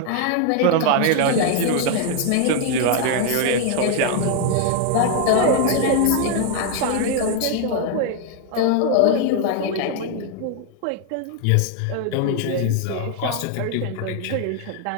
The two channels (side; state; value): both; different; correlation 0.01